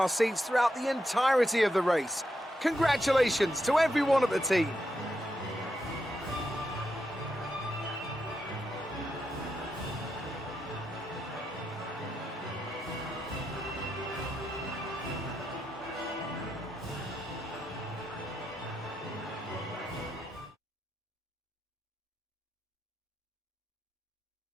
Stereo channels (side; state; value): both; normal; correlation 0.84